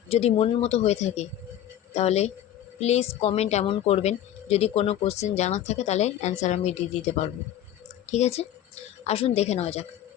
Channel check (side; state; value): right; quieter; 11.4 dB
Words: যদি মনের মতো হয়ে থাকে তাহলে প্লিজ কমেন্ট এমন করবেন, যদি কোনো কোশ্চেন জানার থাকে তাহলে অ্যান্সার আমি দিয়ে দিতে পারবো। ঠিক আছে, আসুন দেখে নেওয়া যাক।